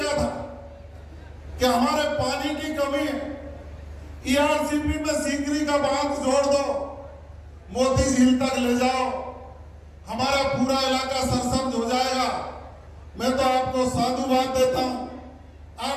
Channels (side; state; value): both; identical; correlation 1.00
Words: था कि हमारे पानी की कमी है, ERCP में सीकरी का बांध जोड़ दो, मोती झील तक ले जाओ, हमारा पूरा इलाका सरसब्ज हो जाएगा। मैं तो आपको साधुवाद देता हूं,